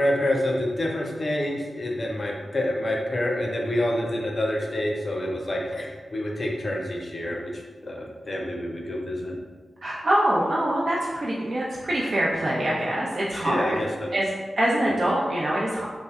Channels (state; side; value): normal; both; correlation 0.92